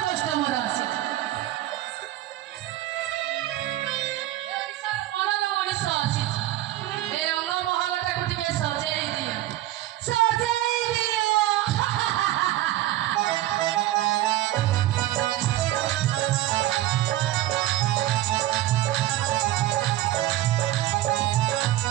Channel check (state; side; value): quieter; left; 15.0 dB